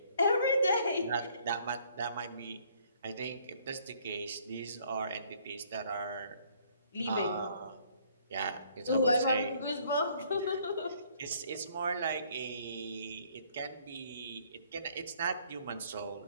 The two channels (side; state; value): both; inverted; correlation -0.62